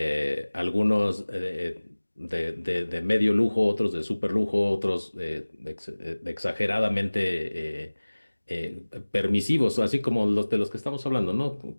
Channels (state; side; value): inverted; both; correlation -1.00